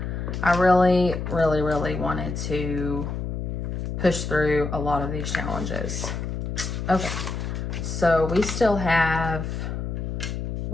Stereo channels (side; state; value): left; noise; hum, 4 dB below the sound